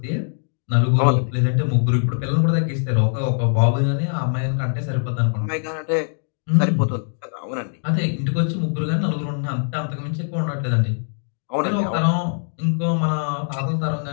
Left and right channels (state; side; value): silent; right; digital silence